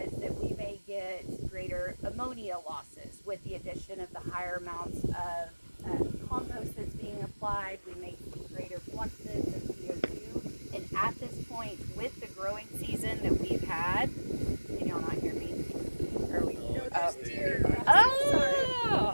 that we may get greater ammonia losses with the addition of the higher amounts of compost that's being applied. We may see greater fluxes of CO2. And at this point, with the growing season that we've had, can y'all not hear me? Are we? Oh!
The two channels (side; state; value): both; inverted; correlation -1.00